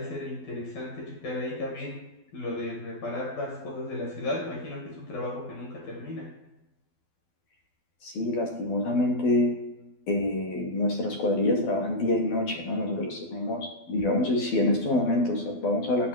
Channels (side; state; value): right; late; 12 ms